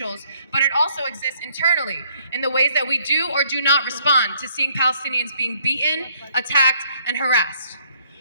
but it also exists internally in the ways that we do or do not respond to seeing Palestinians being beaten, attacked, and harassed.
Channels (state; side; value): inverted; both; correlation -0.65